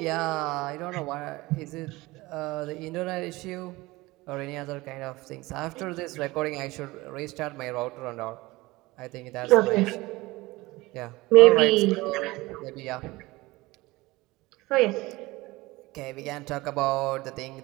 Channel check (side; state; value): left; quieter; 20.7 dB